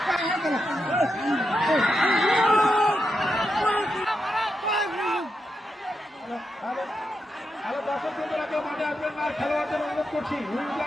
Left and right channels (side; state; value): both; normal; correlation 0.85